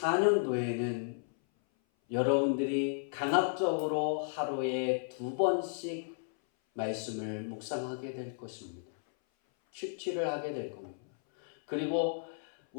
여러분들이 강압적으로 하루에 2번씩 말씀을 묵상하게 될 것입니다. 큐티를 하게 될 겁니다. 그리고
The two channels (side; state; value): right; silent; 55 dB below the other